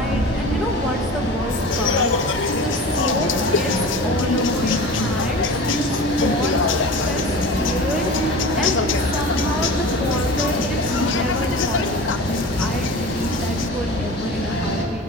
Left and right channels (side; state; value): both; normal; correlation 0.35